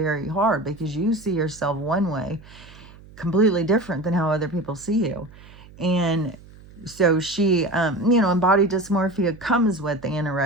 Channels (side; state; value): right; noise; hum, 21 dB below the sound